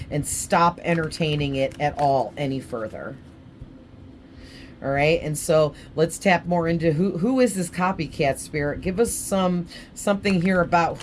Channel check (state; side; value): identical; both; correlation 1.00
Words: and stop entertaining it at all any further. All right, and so let's tap more into who is this copycat, Spirit. Give us something here about